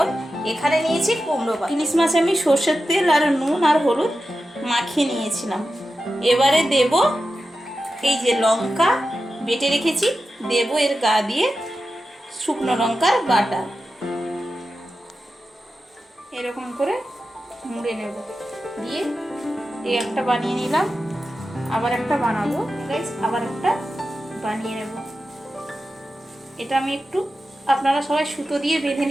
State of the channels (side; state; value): both; normal; correlation 0.92